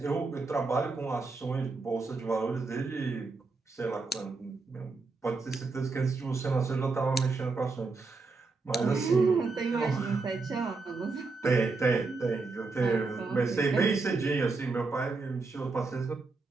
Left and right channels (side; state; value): left; quieter; 4.0 dB